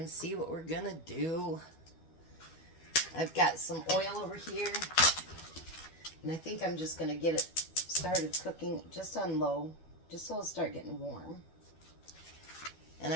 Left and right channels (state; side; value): late; right; 12 ms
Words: see what we're gonna do. I've got some oil over here, and I think I'm just gonna get it started cooking just on low, just so it'll start getting warm. And